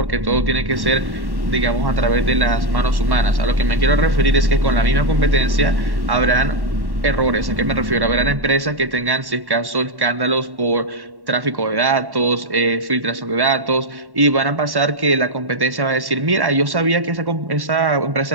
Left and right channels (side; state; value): left; late; 1.1 ms